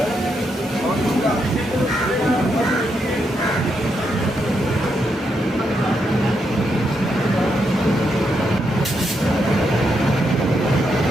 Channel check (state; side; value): normal; both; correlation 0.81